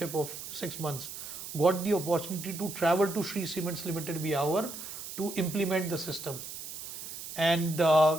of 6 months, got the opportunity to travel to Shree Cements Limited Biawar to implement the system. And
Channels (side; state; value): right; noise; hiss, 9 dB below the sound